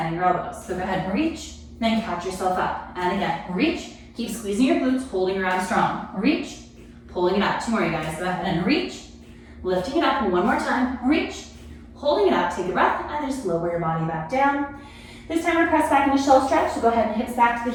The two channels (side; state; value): both; identical; correlation 1.00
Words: your elbows. So go ahead and reach, then catch yourself up. And again, reach, keep squeezing your glutes, holding your abs strong. Reach, pulling it up. 2 more, you guys. Go ahead and reach, lifting it up. 1 more time, reach, holding it up, take a breath, and then just lower your body back down. This time we're gonna press back into shell stretch, so go ahead and hips back to